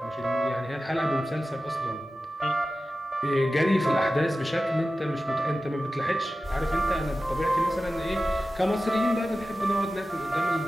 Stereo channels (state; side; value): normal; both; correlation 0.94